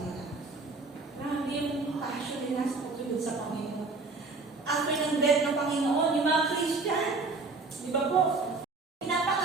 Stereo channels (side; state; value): left; quieter; 3.8 dB